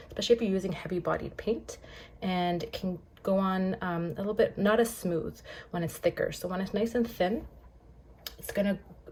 especially if you're using heavy bodied paint, and it can go on a little bit not as smooth when it's thicker. So when it's nice and thin, it's gonna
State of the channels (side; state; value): both; identical; correlation 1.00